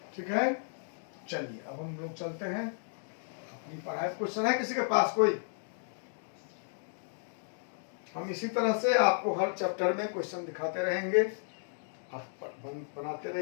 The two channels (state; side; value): silent; right; digital silence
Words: ठीक है, चलिए अब हम लोग चलते हैं अपनी पढ़ाई। क्वेश्चन है किसी के पास कोई? हम इसी तरह से आपको हर चैप्टर में क्वेश्चन दिखाते रहेंगे, आप बनाते